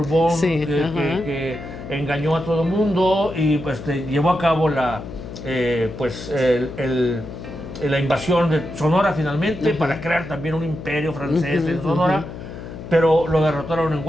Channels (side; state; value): left; noise; hum, 11 dB below the sound